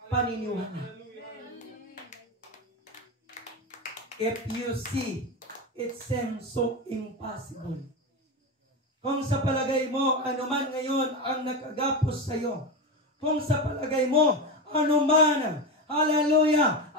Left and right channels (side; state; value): both; normal; correlation 0.18